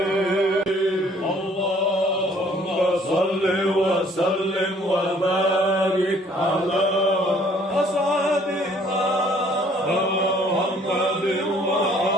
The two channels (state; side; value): normal; both; correlation 0.59